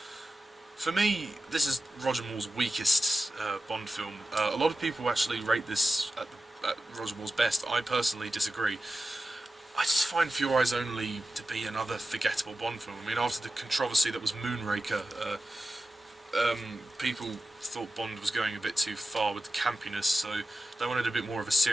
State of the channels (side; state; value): both; normal; correlation 0.92